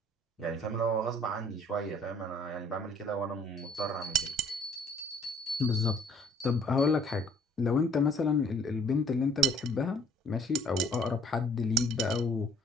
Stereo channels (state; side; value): normal; both; correlation 0.57